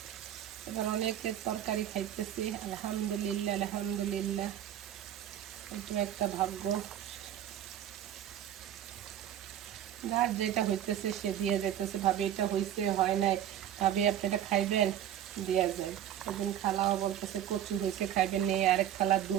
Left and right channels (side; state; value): left; quieter; 10.8 dB